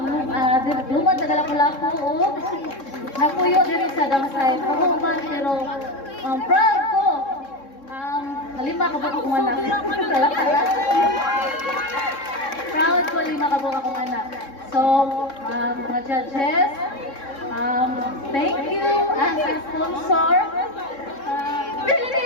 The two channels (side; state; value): right; late; 3.7 ms